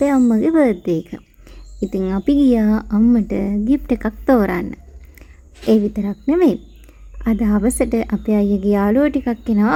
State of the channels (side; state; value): both; identical; correlation 1.00